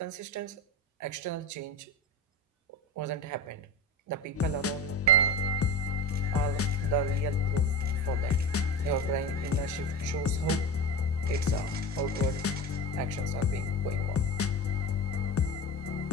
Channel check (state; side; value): normal; both; correlation 0.28